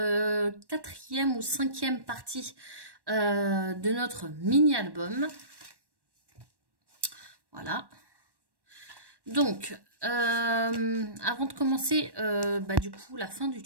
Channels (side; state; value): left; late; 1.1 ms